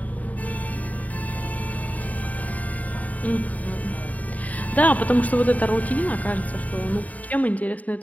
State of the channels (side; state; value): right; late; 0.072 ms